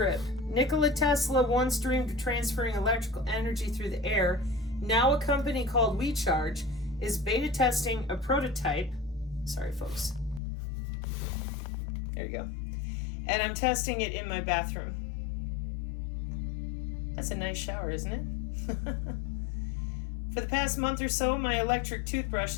Nikola Tesla once dreamed of transferring electrical energy through the air. Now a company called WeCharge is beta testing a prototype. Sorry, folks. There you go. And I'm testing it in my bathroom. That's a nice shower, isn't it? For the past month or so, my electric toothbrush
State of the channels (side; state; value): right; drops out; at 10.4 s